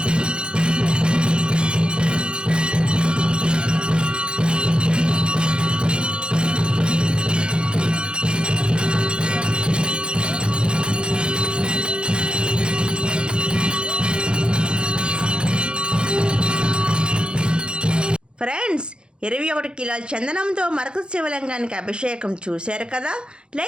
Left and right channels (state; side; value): late; left; 0.052 ms